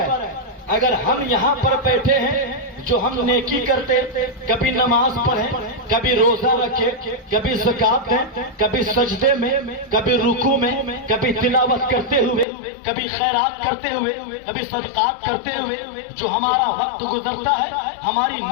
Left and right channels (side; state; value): right; drops out; at 12.5 s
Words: اگر ہم یہاں پر بیٹھے ہیں جو ہم نیکی کرتے، کبھی نماز پڑھیں، کبھی روزہ رکھے، کبھی زکات دیں، کبھی سجدے میں، کبھی رکوع میں، کبھی تلاوت کرتے ہوئے، کبھی خیرات کرتے ہوئے، کبھی صدقات کرتے ہوئے جو ہمارا وقت گزرتا ہے، ہماری